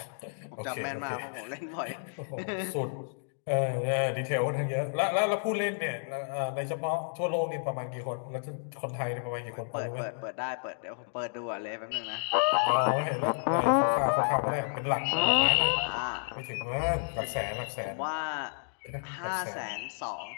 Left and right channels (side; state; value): right; silent; digital silence